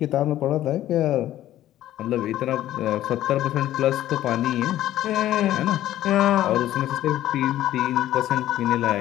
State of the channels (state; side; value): quieter; right; 13.4 dB